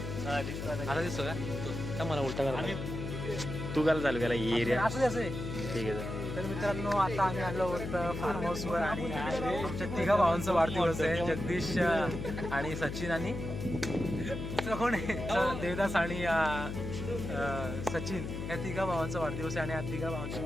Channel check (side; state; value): left; noise; hum, 5 dB below the sound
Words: आता दिसतो का मला उलटा करा तू काय चालू केला एरिया असं आहे. ठीक आहे. तर मित्रांनो आता आम्ही आलो आहोत फार्म हाऊसवर आणि आमच्या 3 भावांचा वाढदिवस आहे. जगदीश आणि सचिन आणि कोण आहे देवदास आणि सचिन या 3 भावांचा वाढदिवस आहे. आणि या 3 भावांच्या